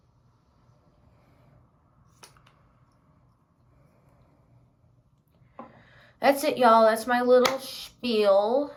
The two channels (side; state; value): both; identical; correlation 1.00